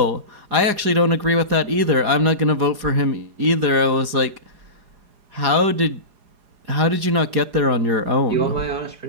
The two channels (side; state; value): left; late; 4.9 ms